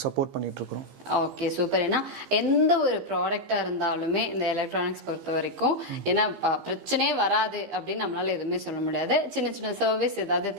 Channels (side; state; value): left; late; 15 ms